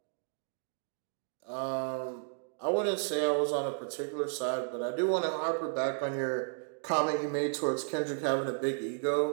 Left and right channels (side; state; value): left; silent; digital silence